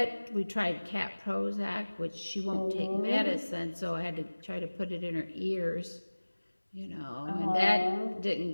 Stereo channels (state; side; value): inverted; both; correlation -1.00